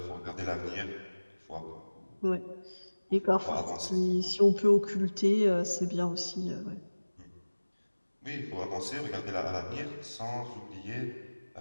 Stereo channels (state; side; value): inverted; both; correlation -1.00